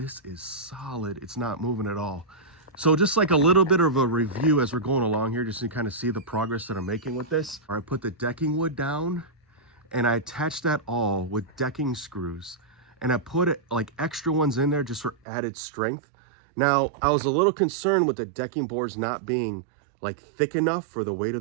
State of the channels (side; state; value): left; drops out; at 15.2 s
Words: is solid. It's not moving at all. So just like a little bit of a review as we're going along here, just to kind of see the progress that I'm making with this. I put the decking wood down and I attached that all with decking screws. And I put like extra ones in there just for added strength. Now, I was a little concerned with the decking boards not being like thick enough for the weight